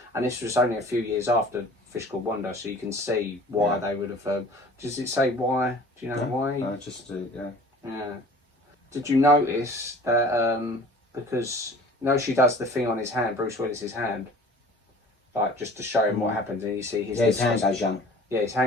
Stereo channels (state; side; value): normal; both; correlation 0.46